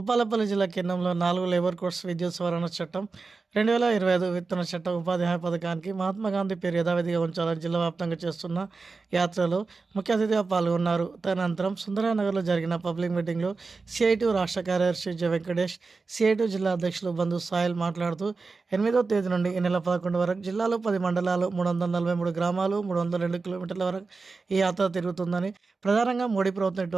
జిల్లా కేంద్రంలో 4 labour codes విద్యుత్ సవరణ చట్టం 2025 విత్తన చట్టం ఉపాధి హామీ పథకానికి మహాత్మా గాంధీ పేరు యథావిధిగా ఉంచాలని జిల్లా వ్యాప్తంగా చేస్తున్న యాత్రలో ముఖ్య అతిథిగా పాల్గొన్నారు. తదనంతరం సుందరనగర్లో జరిగిన పబ్లిక్ మీటింగ్లో సిఐటి రాష్ట్ర కార్యదర్శి జె వెంకటేష్, సిఐటి జిల్లా అధ్యక్షులు బంధు సాయిల్ మాట్లాడుతూ 8వ తేదీ నుండి ఈ నెల 11 వరకు జిల్లాలో 10 మండలాలు, 343 గ్రామాలు, 302 కిలోమీటర్ల వరకు ఈ యాత్ర తిరుగుతుందని, ప్రధానంగా మోడీ ప్రభుత్వం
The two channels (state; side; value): quieter; left; 4.2 dB